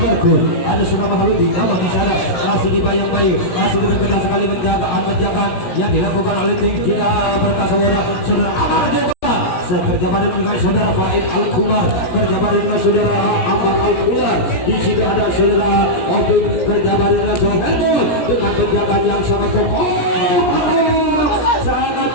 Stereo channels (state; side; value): late; right; 17 ms